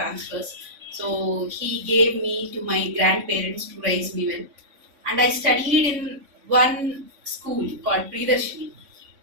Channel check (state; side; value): late; left; 3.5 ms